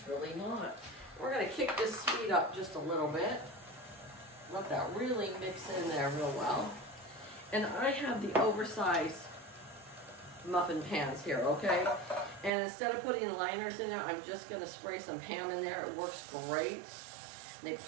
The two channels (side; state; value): left; drops out; at 12.5 s